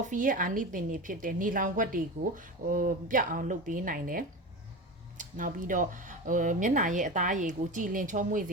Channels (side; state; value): both; normal; correlation 0.27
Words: ရဲ့အာနိသင်တွေဖြစ်တဲ့နေလောင်ခွက်တွေကိုပြတ်အောင်လုပ်ပေးနိုင်တယ်နောက်ပြီးတော့မျက်နှာရဲ့အသားရည်ကိုကြည်လင်ချုံးမွေ့စ